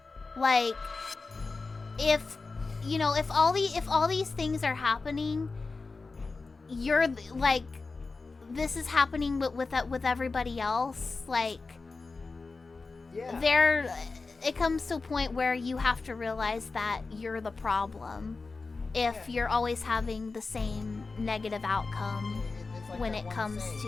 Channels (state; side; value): quieter; right; 4.0 dB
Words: Like, if all these things are happening, you're like, this is happening with everybody else. Like, Yeah. It comes to a point where you have to realize that you're the problem if you're always having the same negative outcome It's like when that it one comes saying,